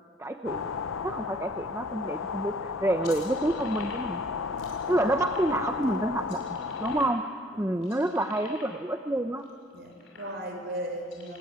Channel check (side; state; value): both; normal; correlation 0.57